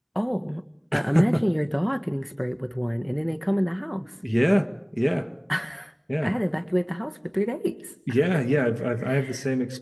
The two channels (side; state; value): both; identical; correlation 1.00